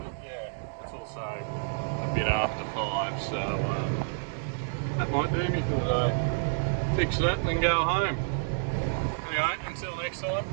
yeah, it's also a bit after 5, so that might do me for the day. Fix that and then go home. Anyway, until next time,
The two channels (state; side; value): silent; left; digital silence